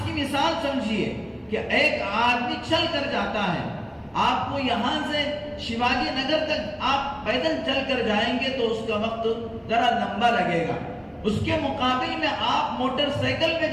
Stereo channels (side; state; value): both; identical; correlation 1.00